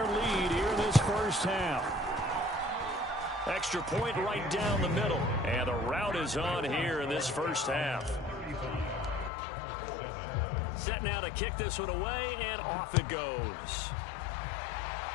lead here in this first half. Extra point right down the middle. And the route is on here in this first half. Set now to kick this one away, and off it goes.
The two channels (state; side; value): drops out; right; at 9.3 s